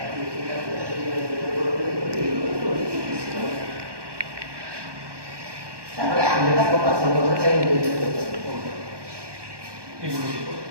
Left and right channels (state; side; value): late; left; 1.2 ms